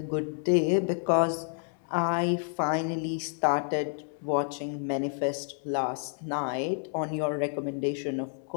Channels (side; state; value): right; silent; 58 dB below the other